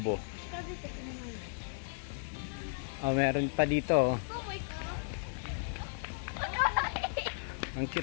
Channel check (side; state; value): right; silent; digital silence